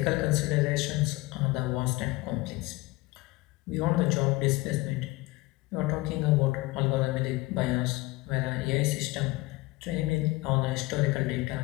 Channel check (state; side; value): quieter; right; 21.3 dB